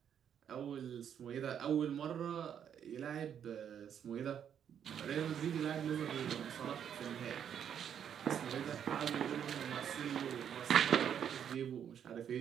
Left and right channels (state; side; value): quieter; left; 8.7 dB